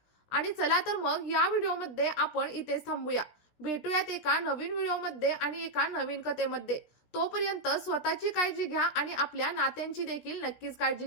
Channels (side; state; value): right; late; 17 ms